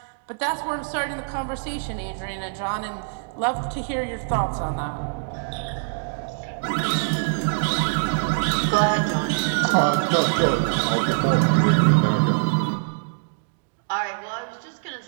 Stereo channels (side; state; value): left; silent; digital silence